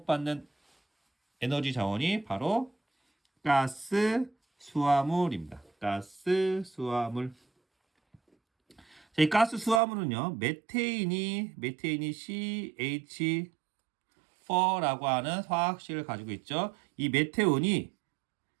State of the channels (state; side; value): drops out; left; at 9.8 s